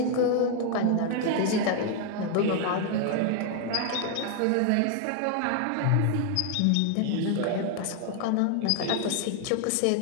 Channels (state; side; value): different; both; correlation 0.00